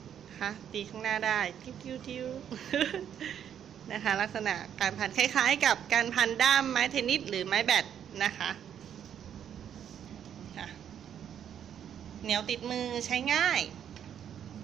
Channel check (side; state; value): left; quieter; 9.2 dB